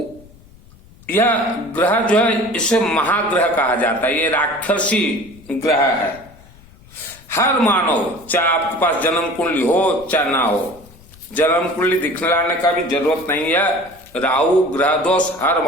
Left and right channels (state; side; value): noise; left; rumble, 25 dB below the sound